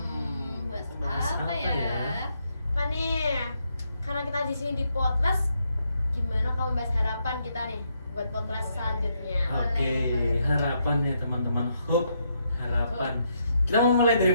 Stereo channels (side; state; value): both; inverted; correlation -0.77